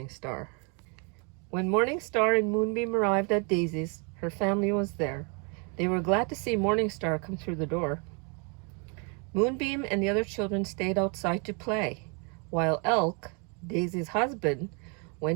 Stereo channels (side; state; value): left; quieter; 35.3 dB